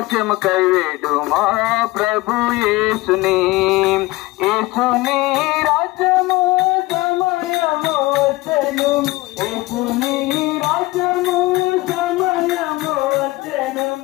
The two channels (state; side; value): quieter; right; 20.4 dB